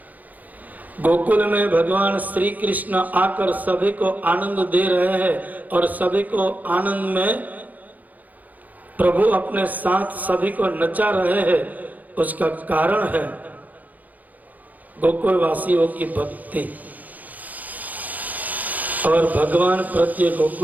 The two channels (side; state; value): left; late; 0.080 ms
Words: गोकुल में भगवान श्री कृष्ण आकर सभी को आनंद दे रहे हैं और सभी को आनंद में प्रभु अपने साथ सभी को नचा रहे हैं। उसका कारण है गोकुल वासियों की भक्ति। और भगवान प्रति